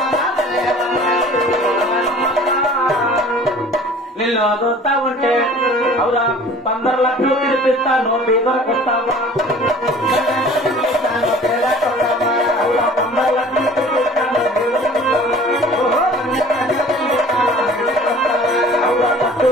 నిన్ను అదవుతా ఉంటే అవురా 15 లక్షలు పిలిపిస్తాను పేదలకు వస్తావా 15 లక్షలు పిలిపిస్తాను అవురా పట్టు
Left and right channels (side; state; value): both; normal; correlation 0.46